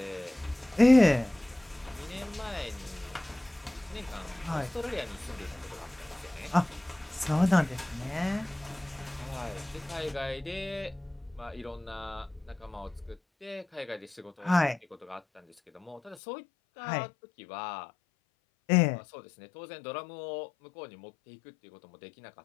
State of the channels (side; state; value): right; drops out; at 16.2 s